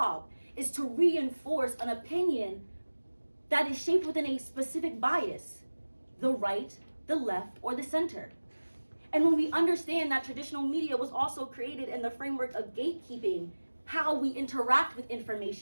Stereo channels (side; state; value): both; inverted; correlation -1.00